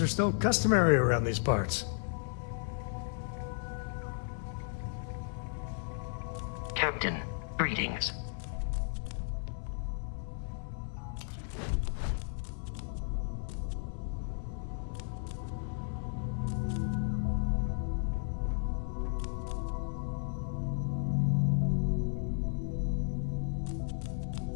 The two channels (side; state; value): right; silent; 55 dB below the other